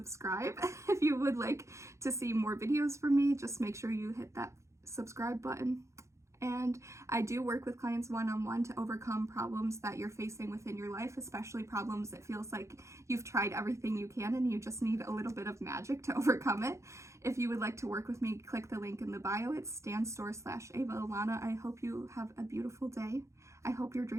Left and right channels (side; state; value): left; late; 0.14 ms